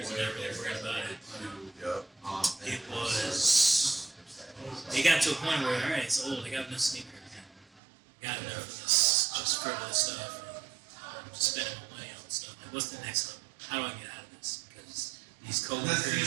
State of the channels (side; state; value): left; drops out; at 7.8 s